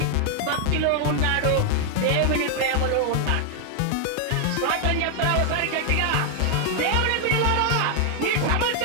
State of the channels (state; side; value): different; both; correlation 0.00